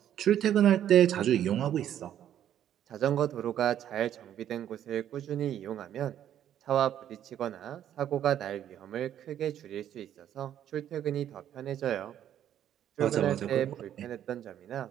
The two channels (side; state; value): left; quieter; 10.6 dB